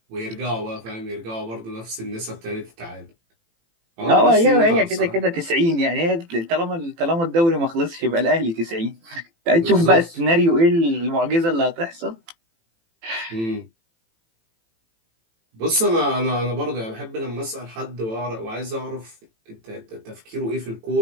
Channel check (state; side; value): late; left; 18 ms